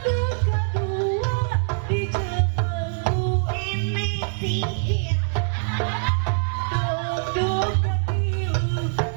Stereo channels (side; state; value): left; silent; digital silence